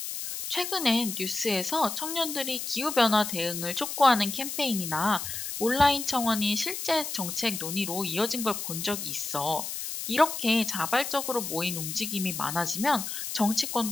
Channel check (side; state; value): left; noise; hiss, 5 dB below the sound